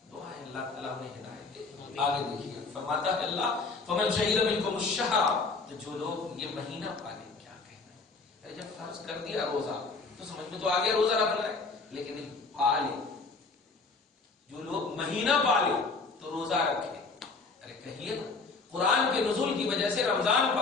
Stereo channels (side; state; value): right; quieter; 4.1 dB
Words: دعا ہے اللہ تعالیٰ انہیں ہدایت دے۔ آگے دیکھیے، فرماتا ہے اللہ فمن شہد منکم الشہر، جو لوگ یہ مہینہ پالے، کیا کہنا ہے؟ جب فرض کر دیا روزہ تو سمجھ میں تو آگے روزہ رکھنا ہے، لیکن پالے، جو لوگ مہینہ پالے تو روزہ رکھے۔ ارے کہیے نا، قرآن کے نزول کی وجہ سے رمضان